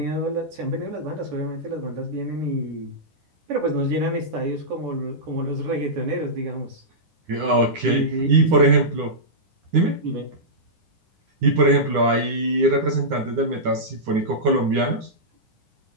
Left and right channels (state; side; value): late; left; 9.8 ms